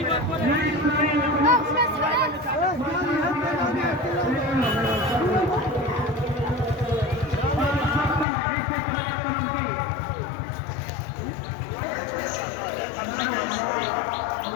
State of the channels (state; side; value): drops out; right; at 8.2 s